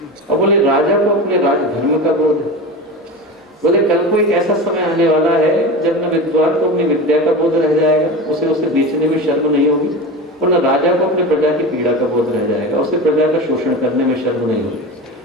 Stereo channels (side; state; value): both; normal; correlation 0.28